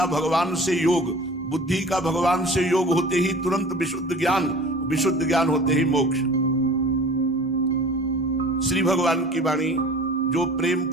भगवान से योग, बुद्धि का भगवान से योग होते ही तुरंत विशुद्ध ज्ञान, विशुद्ध ज्ञान होते ही मोक्ष। श्री भगवान की वाणी, जो प्रेम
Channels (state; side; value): normal; both; correlation 0.43